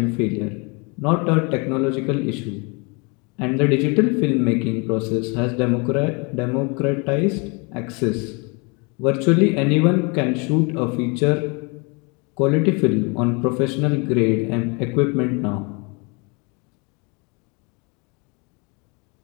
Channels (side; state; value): right; quieter; 30.9 dB